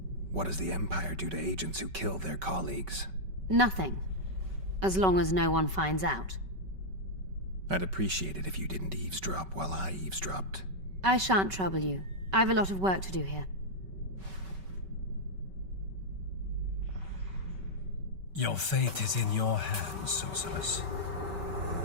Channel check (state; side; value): late; left; 5.2 ms